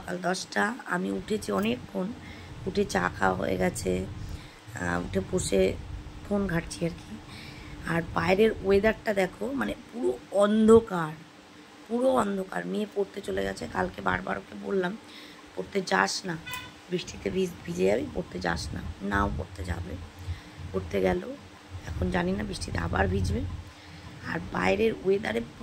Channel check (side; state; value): both; identical; correlation 1.00